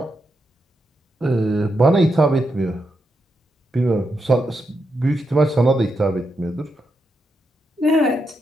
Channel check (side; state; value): both; normal; correlation 0.84